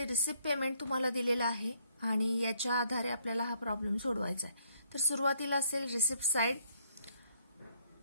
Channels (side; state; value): both; inverted; correlation -0.68